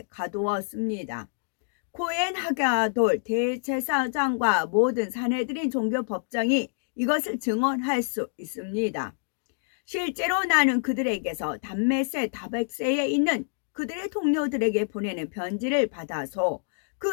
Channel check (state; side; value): silent; right; digital silence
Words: 가두었습니다. 코엔 하가돌 대제사장과 모든 사내들인 종교법정이 이것을 증언할 수 있습니다. 실제로 나는 그들에게서 담메세 다백세에 있는 그들의 동료들에게 보내는 편지를 받아서